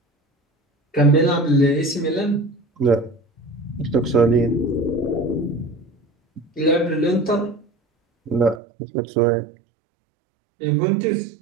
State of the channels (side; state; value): left; drops out; at 8.6 s